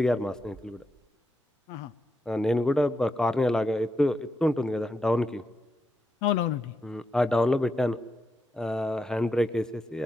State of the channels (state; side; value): normal; both; correlation 0.85